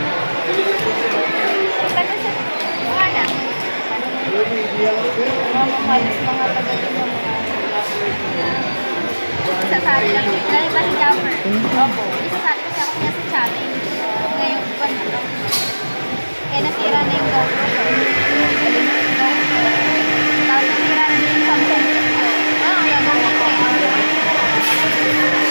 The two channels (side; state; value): both; inverted; correlation -1.00